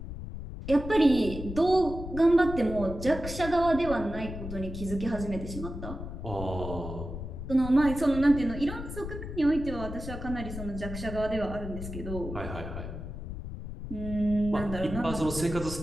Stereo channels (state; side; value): noise; left; rumble, 8 dB below the sound